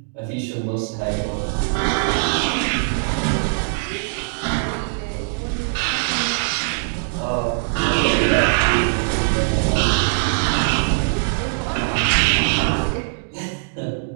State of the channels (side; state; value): left; silent; digital silence